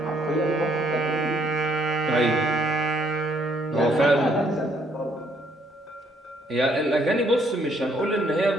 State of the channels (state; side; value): normal; both; correlation 0.67